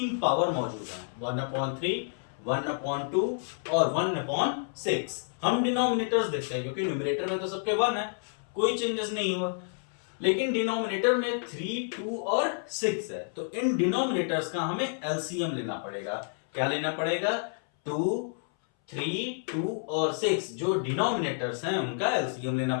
पावर मौजूद है, 1/3, 1/2 और 1/6। हम डिनोमिनेटर्स देखते हैं क्योंकि न्यूमरेटर में तो सबके 1 है, कोई चेंजेस नहीं हुआ। लेकिन डिनोमिनेटर में 3, 2 और 6 है, तो इन डिनोमिनेटर्स का हमें एलसीएम लेना पड़ेगा। क्या लेना पड़ेगा, 2, 3, 2 और 6 जो डिनोमिनेटर्स हैं उनका एलसीएम लेना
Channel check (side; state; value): right; silent; 58 dB below the other